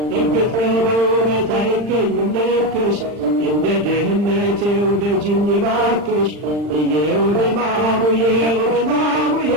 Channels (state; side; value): late; left; 40 ms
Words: እርግጥ ነው በውበት አይገኝም ልክሽ እንደ ድህነት ወደጅኝ እባክሽ እየው ድማሙ እየው ድማሙ